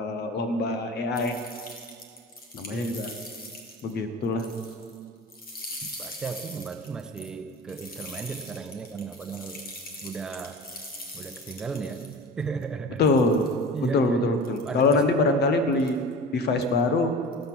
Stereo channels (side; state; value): both; normal; correlation 0.35